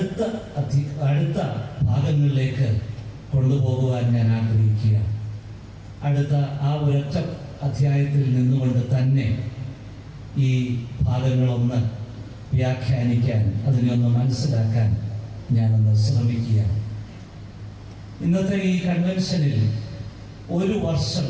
ഭാഗങ്ങളിലേക്ക് കൊണ്ടുപോകുവാൻ ഞാൻ ആഗ്രഹിക്കുക. അടുത്ത ആ ഒരൊറ്റ അധ്യായത്തിൽ നിന്നുകൊണ്ട് തന്നെ ഈ ഭാഗങ്ങളൊന്ന് വ്യാഖ്യാനിക്കാൻ, അതിനൊന്ന് മനസ്സിലാക്കാൻ ഞാനൊന്ന് ശ്രമിക്കുക. ഇന്നത്തെ ഈ കൺവെൻഷനിൽ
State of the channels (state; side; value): identical; both; correlation 1.00